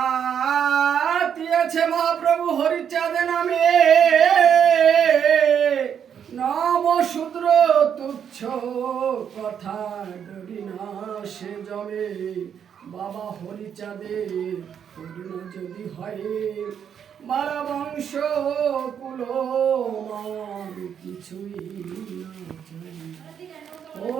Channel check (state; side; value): quieter; left; 8.2 dB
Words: মাতিয়েছে মহাপ্রভু হরিচাঁদ নামে, নম শূদ্র তুচ্ছ কথা ডরি না সে জমে। বাবা হরিচাঁদের করুণা যদি হয়, মারা বংশ কুল মান কিছুই না চাই।